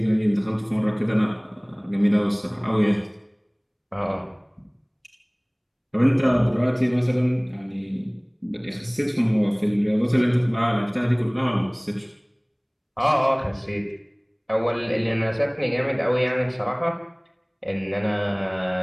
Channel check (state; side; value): identical; both; correlation 1.00